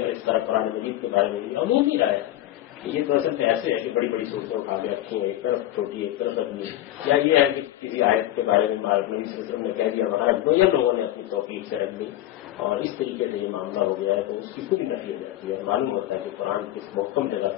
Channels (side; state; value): right; quieter; 13.9 dB